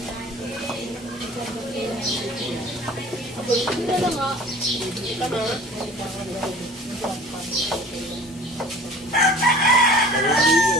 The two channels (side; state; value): both; normal; correlation 0.45